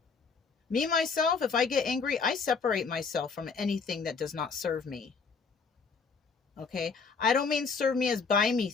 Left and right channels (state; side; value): quieter; right; 5.1 dB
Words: Me, myself, if I get angry, I separate myself from anything that does not serve me. Okay? I don't mean serve me as buy me